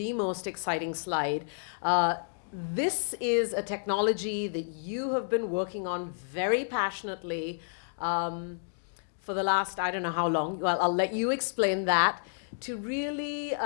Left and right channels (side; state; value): right; silent; digital silence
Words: most exciting slide. This is a technology that you have been working on very passionately for the last, I don't know how long. Well, I'll let you explain that. To really